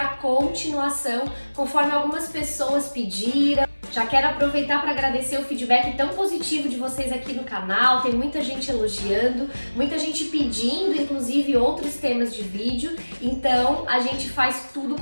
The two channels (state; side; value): inverted; both; correlation -1.00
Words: continuação, conforme algumas pessoas pediram. Já quero aproveitar para agradecer o feedback tão positivo de vocês aqui no canal. Tem muita gente elogiando, muita gente pedindo, inclusive, outros temas de vídeo. Então, a gente faz tudo